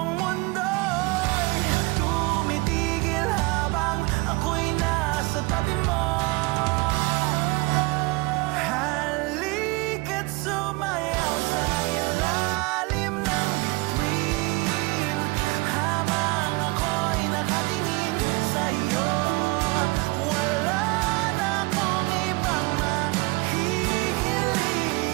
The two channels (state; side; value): quieter; left; 24.9 dB